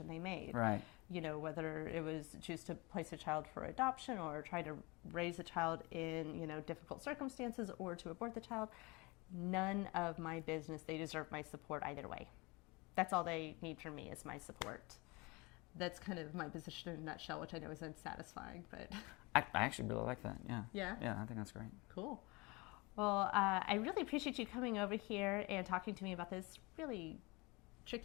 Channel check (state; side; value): quieter; right; 25.8 dB